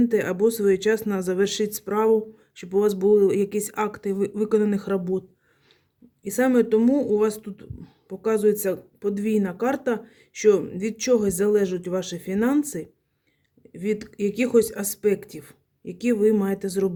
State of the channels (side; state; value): both; identical; correlation 1.00